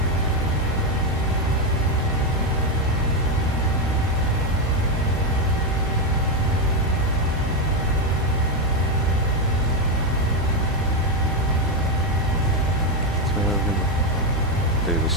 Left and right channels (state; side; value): normal; both; correlation 0.07